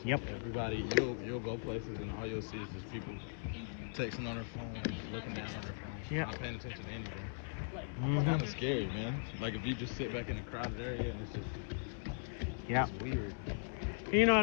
Yep. Everybody, you'll go places and all you'll see is just people texting on their phone, just looking down on their phone, Yep. not paying attention to anything. It's Mhm. kind of scary, man. Like if you just sit back in a crowded area and it's Yep. just weird. You know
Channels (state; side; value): silent; right; digital silence